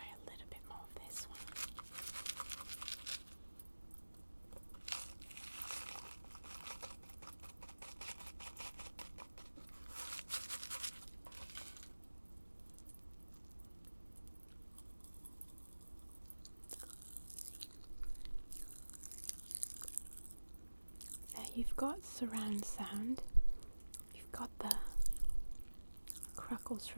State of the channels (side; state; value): both; inverted; correlation -1.00